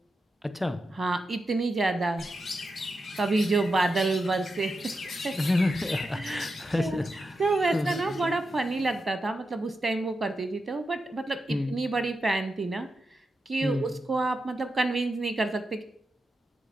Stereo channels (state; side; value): normal; both; correlation 0.88